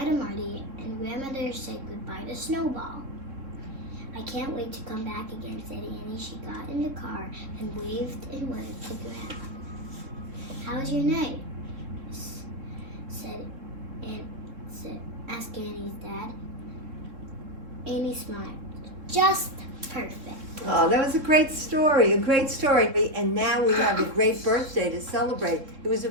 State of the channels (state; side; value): late; left; 3.6 ms